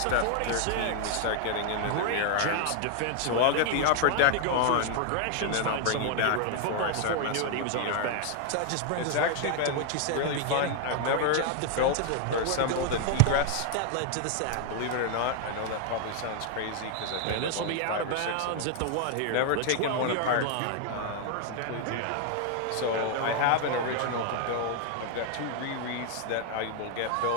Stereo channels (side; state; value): both; different; correlation 0.00